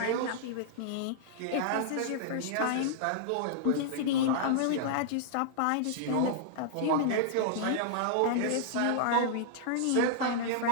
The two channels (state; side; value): different; both; correlation -0.01